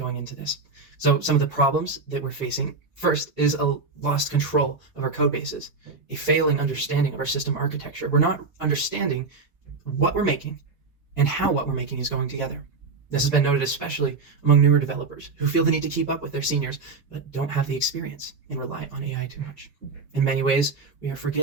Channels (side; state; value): left; quieter; 4.2 dB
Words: into this. So some of the problems that we're facing, first, is a lost control of our code bases, a failing understanding of our system architecture. We're not understanding what we're making and how what we're making is going together. This has been noted especially among newer developers who feel the need to keep up with their seniors, but don't have the experience and rely on AI too much. In many ways, we are